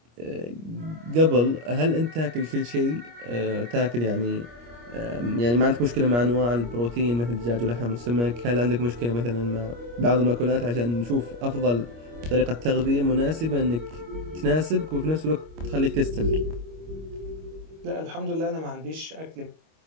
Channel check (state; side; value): late; left; 25 ms